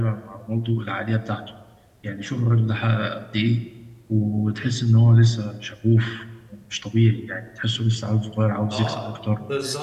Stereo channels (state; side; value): identical; both; correlation 1.00